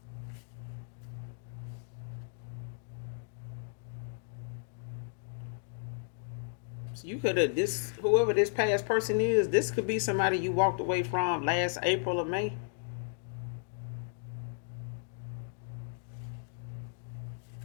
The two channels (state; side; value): silent; right; digital silence